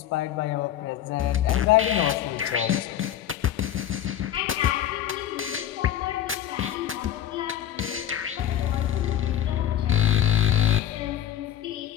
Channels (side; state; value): right; quieter; 11.0 dB